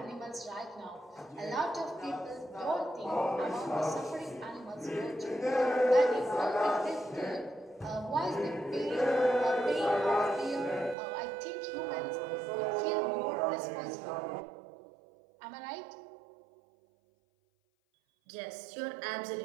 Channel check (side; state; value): left; drops out; at 11.0 s